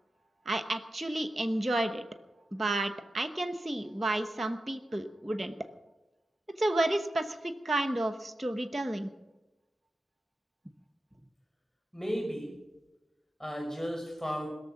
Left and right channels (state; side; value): normal; both; correlation 0.92